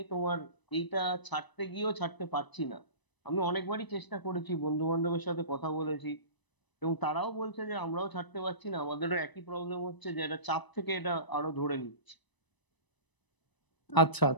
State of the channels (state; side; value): late; right; 1.0 ms